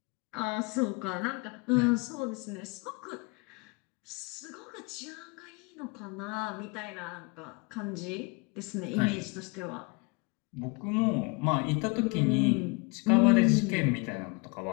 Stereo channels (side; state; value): right; quieter; 29.7 dB